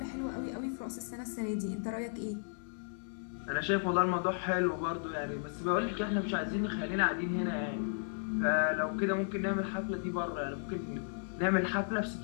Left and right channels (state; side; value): silent; right; 55 dB below the other